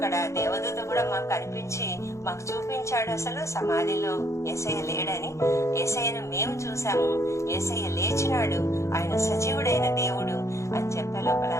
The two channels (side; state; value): right; late; 0.14 ms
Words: దేవదూత కూడా మాకు కనిపించి మాకు చూపించాడు అసలు సమాధిలో యేసయ్య లేడని. యేసయ్యను మేము చూసాము, యేసయ్య లేచినాడు, ఆయన సజీవుడైన దేవుడు అని చెప్పే లోపల